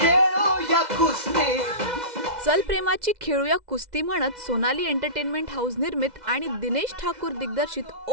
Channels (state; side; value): late; left; 2.0 ms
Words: खेळूया कुस्ती. चल प्रेमाची खेळूया कुस्ती म्हणत सोनाली एंटरटेनमेंट हाऊस निर्मित आणि दिनेश ठाकूर दिग्दर्शित